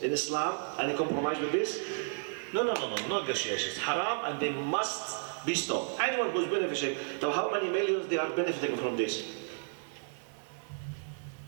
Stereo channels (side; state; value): left; silent; digital silence